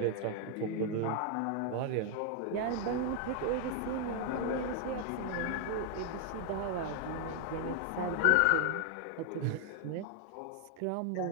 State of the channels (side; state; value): both; different; correlation 0.00